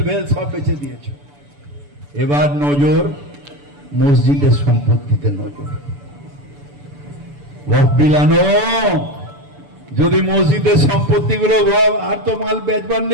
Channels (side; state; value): left; late; 6.9 ms